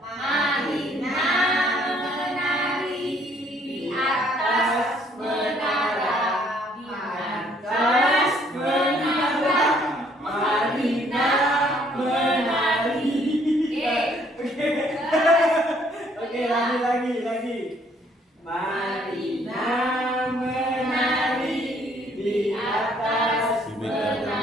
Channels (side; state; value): both; normal; correlation 0.64